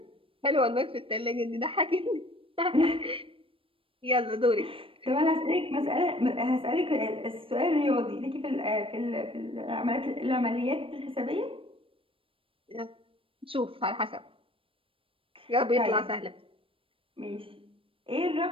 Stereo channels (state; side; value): late; left; 0.26 ms